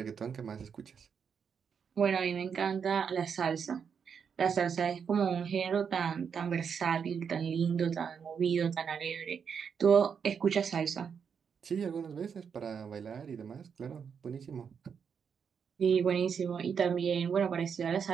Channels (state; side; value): quieter; left; 6.8 dB